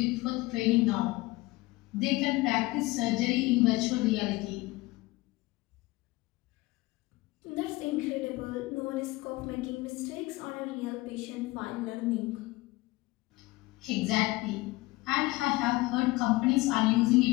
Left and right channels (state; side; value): quieter; right; 20.8 dB